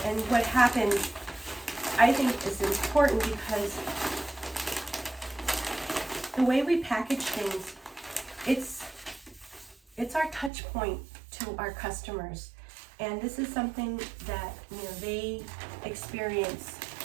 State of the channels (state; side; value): drops out; left; at 10.5 s